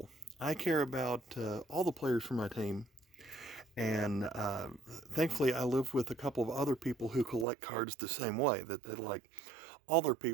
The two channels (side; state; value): left; drops out; at 7.5 s